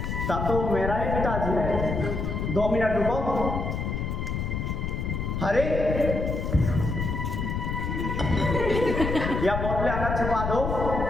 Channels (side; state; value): left; noise; rumble, 2 dB below the sound